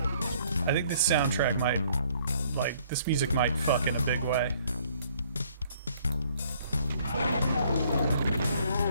I think this soundtrack might, like, this music might fuck in a big way.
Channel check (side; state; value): both; inverted; correlation -0.62